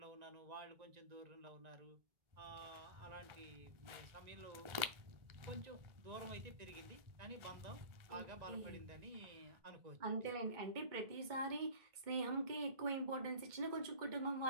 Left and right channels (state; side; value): late; left; 1.4 ms